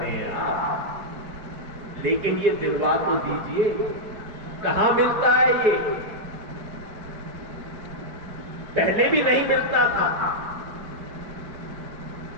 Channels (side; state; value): left; late; 4.7 ms